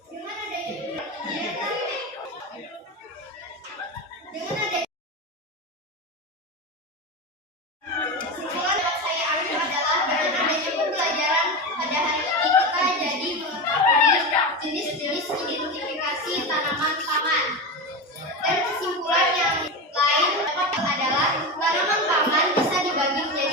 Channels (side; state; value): both; normal; correlation 0.20